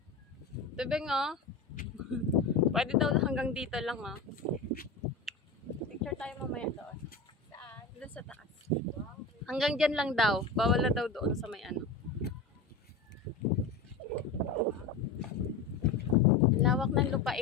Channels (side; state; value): right; quieter; 4.2 dB